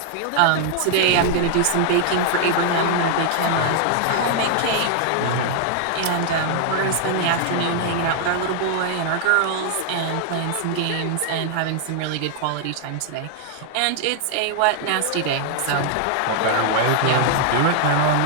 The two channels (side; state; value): both; different; correlation 0.00